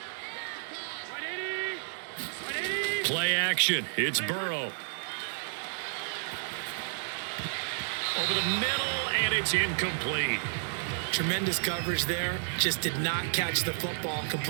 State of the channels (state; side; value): silent; left; 57 dB below the other